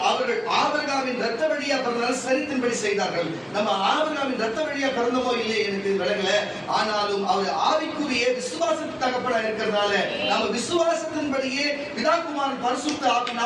அவர்கள் ஆபிரகாமின் ரத்த வழியா பிறந்தாலும் சரித்தின்படி செய்தார்கள். நம்ம ஆபிரகாமின் ரத்த வழியா பிறந்தமோ இல்லையே எனக்கு விளங்கல. ஆனாலும் அவர் ஆவிக்குரிய விசுவாசத்துக்கு தகப்பனா இருக்கிறதுனால நம்ம விசுவாசத்தின்படியே பிதாகுமாரன் பரிசுத்த ஆவி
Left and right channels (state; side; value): identical; both; correlation 1.00